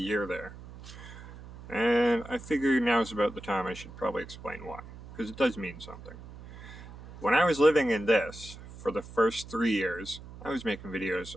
there. And I figure now's about the time I should probably explain why, because it does mean something. When I was living in this, for the first 3 years, I was making videos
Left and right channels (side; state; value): right; noise; hum, 15 dB below the sound